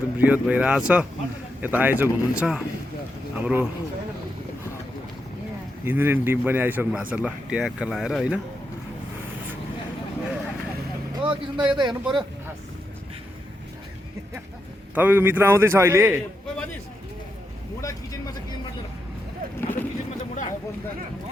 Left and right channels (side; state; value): both; normal; correlation 0.84